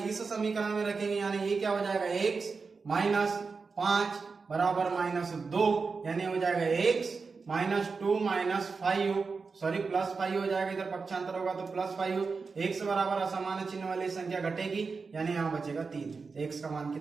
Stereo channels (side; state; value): left; quieter; 4.7 dB